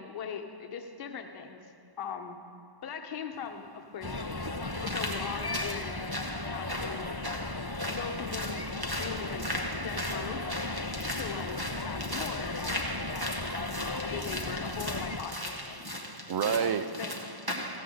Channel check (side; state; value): left; late; 1.1 ms